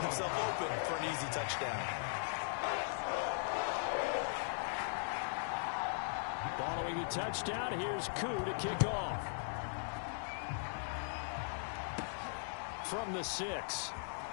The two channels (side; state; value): right; silent; digital silence